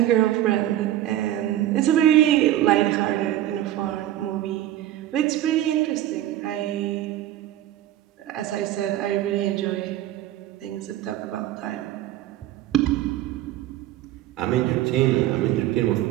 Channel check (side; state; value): left; quieter; 13.2 dB